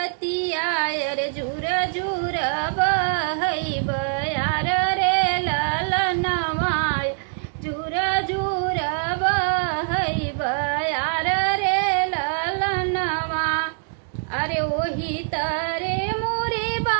रे झूर झूर बहई बयार रे ललनवा झूर झूर बहई बयार रे ललनवा। अरे वही तरे मोरे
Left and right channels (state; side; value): silent; left; digital silence